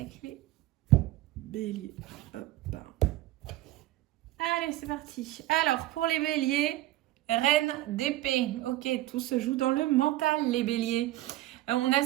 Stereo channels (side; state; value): left; quieter; 15.9 dB